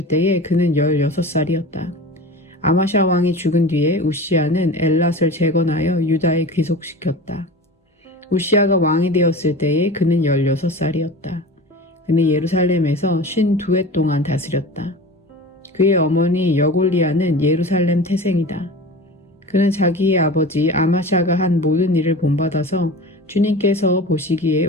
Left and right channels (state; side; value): normal; both; correlation 0.34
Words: 때에 그는 16살이었다. 아마샤 왕이 죽은 뒤에 우시야는 엘랏을 재건하여 유다에 귀속시켰다. 우시야가 왕이 되었을 때에 그는 16살이었다. 그는 예루살렘에서 52해 동안 다스렸다. 그의 어머니 여골리아는 예루살렘 태생이다. 그는 자기의 아버지 아마샤가 한 모든 일을 본받아서 주님께서 보시기에